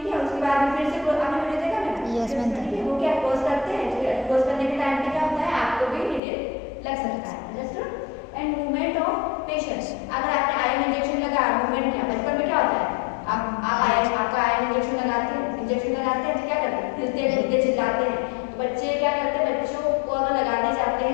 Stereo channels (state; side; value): drops out; right; at 6.2 s